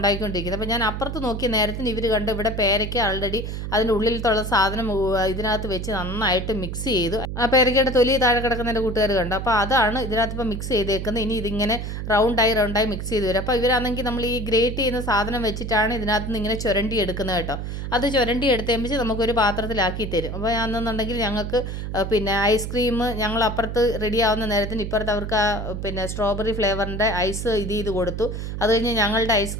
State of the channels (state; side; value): noise; right; hum, 5 dB below the sound